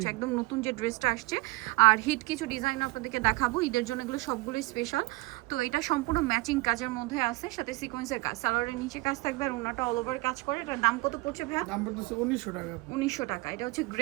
একদম নতুন যে ড্রেসটা আসছে আর হিট কিছু ডিজাইন আপনাদেরকে দেখাবো ঈদের জন্য, এগুলো সবগুলোই স্পেশাল। তো এটা সম্পূর্ণ ম্যাচিং কাজের মধ্যে আছে, সাথে সিকোয়েন্সের কাজ, সালোয়ারের নিচে কাজ থাকবে আর ওনাটা অল ওভার কাজ করে। এটার দাম কত পড়ছে ভাইয়া? দাম পড়তেছে 1900 টাকা। 1900 টাকা। এটা হচ্ছে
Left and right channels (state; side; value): quieter; left; 22.1 dB